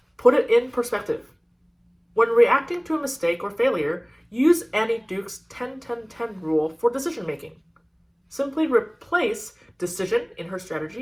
put it in perspective. When reacting to a mistake or failure, use Annie Duke's 10-10-10 rule for decision making. Simply replace decision in her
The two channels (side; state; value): both; identical; correlation 1.00